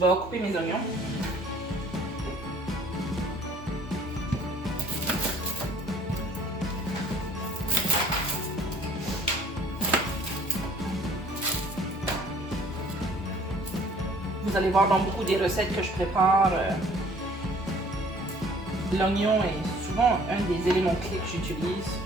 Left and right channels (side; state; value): both; normal; correlation 0.55